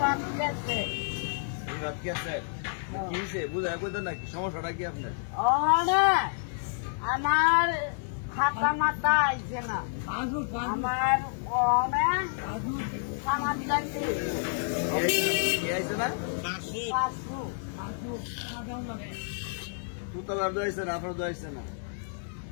ক্যাসেট বিভাগ ক্যাসেট কি হয়েছে বুঝে কইতেন নাকি? সমস্যাটা কি আপনার? ওখানে আমার খাতা মাথা আইছে না আমার অনেক থানার চাকরি কি আইছে না? পাঁচশো তুতাবার দোয়াইছে না, আপনার দোয়াইছে না।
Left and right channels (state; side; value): silent; right; 58 dB below the other